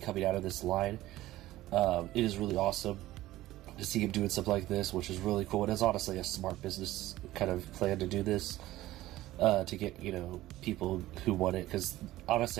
out of this line. It is really awesome to see him doing something like this, which is really cool. It is honestly a smart business kind of plan to do this, to get, people who want it, because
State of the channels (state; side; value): quieter; left; 16.0 dB